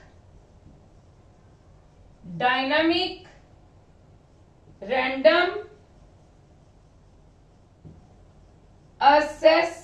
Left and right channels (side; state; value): both; identical; correlation 1.00